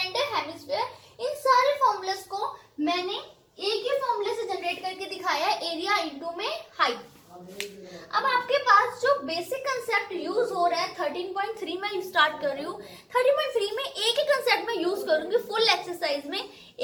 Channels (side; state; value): both; identical; correlation 1.00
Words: hemisphere. इन सारे फॉर्मूलाज को मैंने एक ही फॉर्मूले से जनरेट करके दिखाया है, एरिया इंटू में हाइट। अब आपके पास जो बेसिक कंसेप्ट यूज हो रहा है 13.3 में स्टार्ट कर रही हूँ। 13.3 में एक ही कंसेप्ट में यूज करूंगी फुल एक्सरसाइज में।